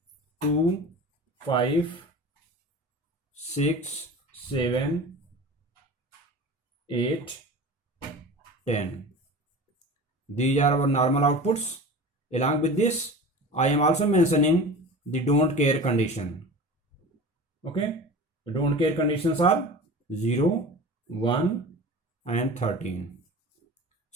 2, 5, 6, 7, 8, 10. These are our normal outputs. Along with this, I am also mentioning the don't care condition. Okay. The don't care conditions are 0, 1 and 13.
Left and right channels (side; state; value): both; normal; correlation 0.36